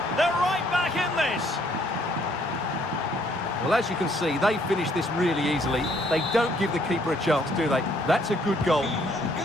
They're right back in this. Well, as you can see, they finished this really easily. They don't give the keeper a chance, do they? That's a good goal.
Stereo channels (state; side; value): normal; both; correlation 0.65